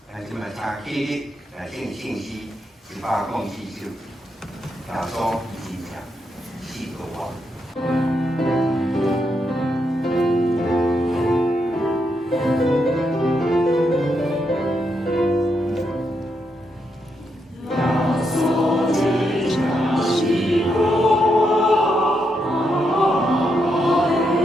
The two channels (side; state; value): both; normal; correlation 0.81